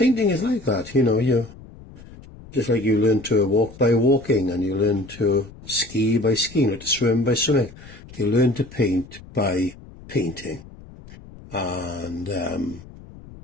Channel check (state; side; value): noise; left; rumble, 19 dB below the sound